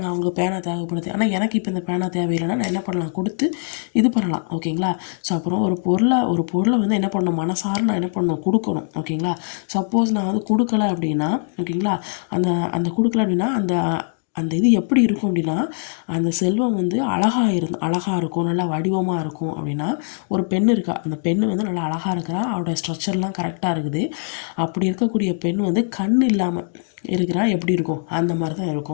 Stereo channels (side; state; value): right; silent; digital silence